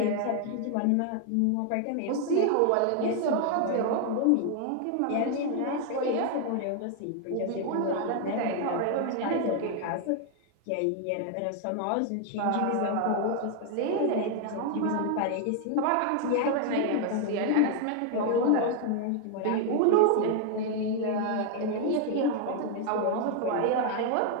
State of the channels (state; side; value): different; both; correlation 0.00